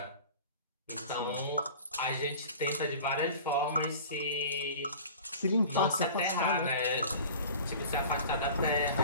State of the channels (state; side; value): inverted; both; correlation -0.40